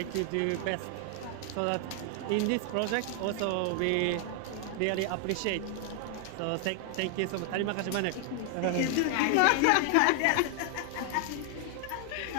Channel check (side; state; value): both; different; correlation 0.00